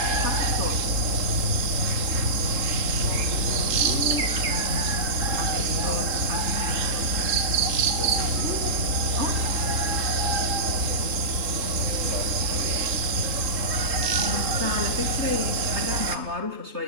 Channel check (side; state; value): left; late; 3.7 ms